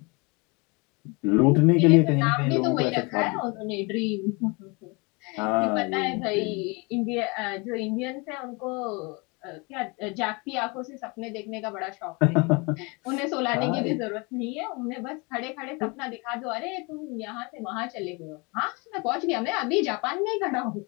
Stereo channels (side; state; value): right; quieter; 29.0 dB